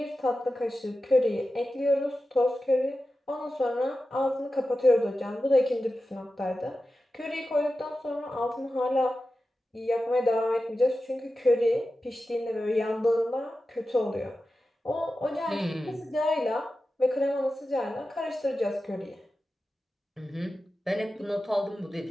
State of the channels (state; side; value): normal; both; correlation 0.93